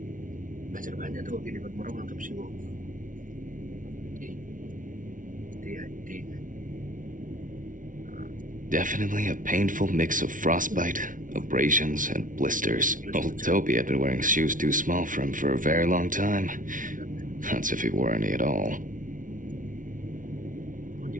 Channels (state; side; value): late; left; 0.38 ms